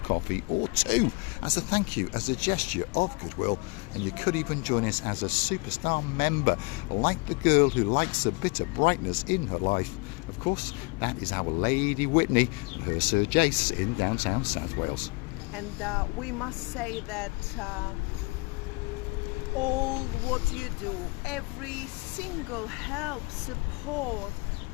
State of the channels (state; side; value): quieter; right; 28.7 dB